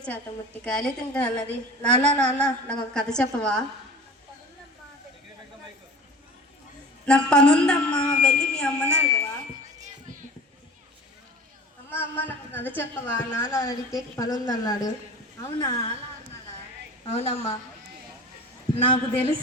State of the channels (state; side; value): normal; both; correlation 0.38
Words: చేత ముట్టికాయలు తింటానన్నది. నాన్న నాన్న నాకు ఒక కథ చెప్పవా? నాకు పనుందమ్మా, వెళ్ళి మీ అమ్మని అడగవా? అమ్మ అమ్మ నాకు కథ చెప్పవా? నాన్న అడిగితే పనుందన్నాడు. అవునా? అవునమ్మా. నాకు